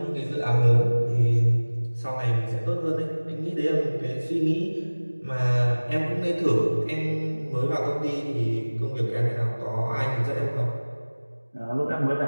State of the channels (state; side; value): inverted; both; correlation -1.00